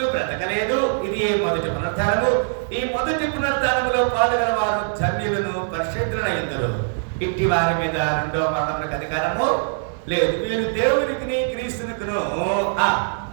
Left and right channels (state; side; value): silent; left; digital silence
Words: బ్రతకలేదు. ఇది మొదటి పునరుద్ధానము. ఈ మొదటి పునరుద్ధానములో పాల్గొన వారు ధన్యులను, పరిశుద్ధులైందరు. ఇట్టి వారి మీద రెండవ మరణములకు అధికారము లేదు. వీరు దేవునికి క్రీస్తునికును